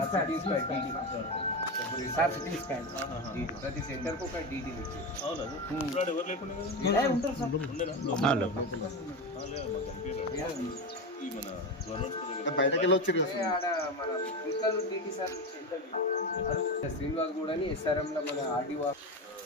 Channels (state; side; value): normal; both; correlation 0.19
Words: scan sir CT scan ప్రతి సెంటర్కి ఒక డీటెయిల్ ఇచ్చి. అవును ఇప్పుడు ఎవరు లేకుండా ఉంటారు సార్ ఉండేనా ఈ మన గవర్నమెంట్ బయటకి వెళ్ళొచ్చు ఆడ మన ఫిజికల్ డీటీ సార్ శ్రీనివాస్ కూడా ఎస్ఆర్ఎంలో మన ఆర్డీఓ